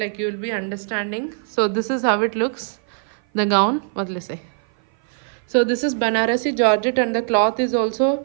you will be understanding. So this is how it looks, the gown. What will I say? So this is Banarasi georgette, and the cloth is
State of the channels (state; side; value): silent; left; 55 dB below the other